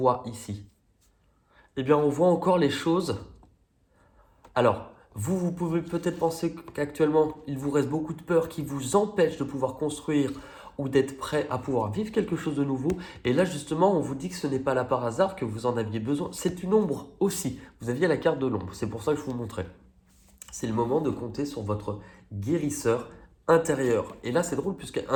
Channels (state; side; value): identical; both; correlation 1.00